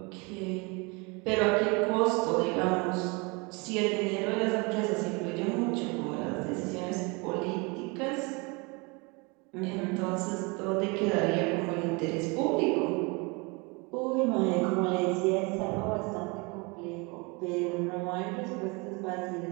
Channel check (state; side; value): quieter; left; 28.7 dB